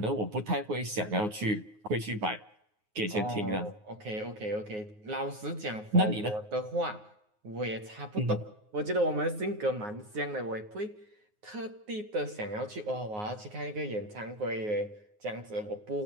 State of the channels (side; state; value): left; late; 9.5 ms